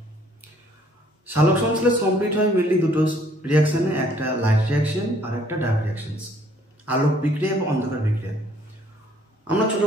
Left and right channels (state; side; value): normal; both; correlation 0.62